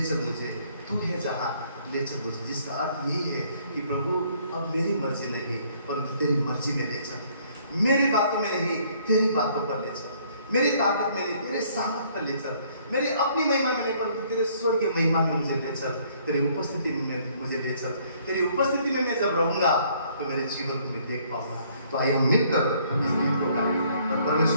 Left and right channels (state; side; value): inverted; both; correlation -0.63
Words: मुझे तू है जहाँ, ले चल मुझे, जिसका अर्थ यही है कि प्रभु अब मेरी मर्जी नहीं परंतु तेरी मर्जी में ले चल। मेरी बातों में नहीं, तेरी बातों पर ले चल। मेरी ताकत में नहीं, तेरे सामर्थ पर ले चल। मेरी अपनी महिमा में नहीं परंतु तेरे स्वर्गीय महिमा में मुझे ले चल। तेरी उपस्थिति में मुझे ले चल। तेरी उपस्थिति में मैं जब रहूंगा तो मेरे जीवन को मैं देख पाऊंगा। तो आइए हम मिलकर इस गीत को गाएं और